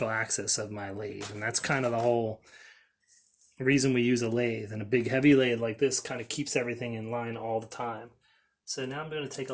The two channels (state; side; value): identical; both; correlation 1.00